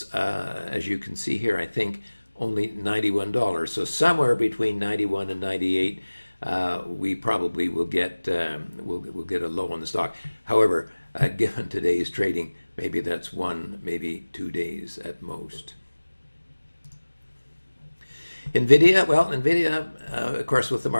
as you can see here, I think only $91. So somewhere between 91 and 98. We probably will get we'll get a low on the stock. However, given today's trading, maybe that's 1, maybe 2 days at most. NVIDIA, of course, with the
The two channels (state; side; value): inverted; both; correlation -1.00